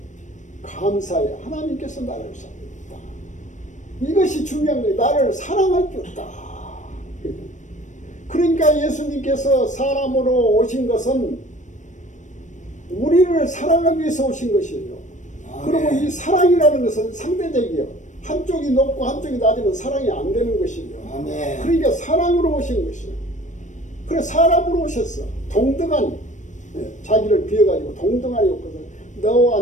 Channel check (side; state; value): right; late; 0.35 ms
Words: 감사해. 하나님께서 나를 사랑했다. 이것이 중요한 거예요. 나를 사랑할 줄 있다. 그러니까 예수님께서 사람으로 오신 것은 우리를 사랑하기 위해서 오신 것이에요. 그리고 이 사랑이라는 것은 상대적이에요. 한쪽이 높고 한쪽이 낮으면 사랑이 안 되는 것이에요. 아멘. 그러니까 사랑으로 오신 것이에요. 그래 사람으로 오셨어. 동등하니. 자기를 비워가지고 동등하니 없거든.